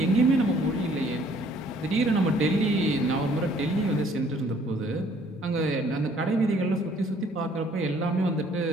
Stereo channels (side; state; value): both; normal; correlation 0.60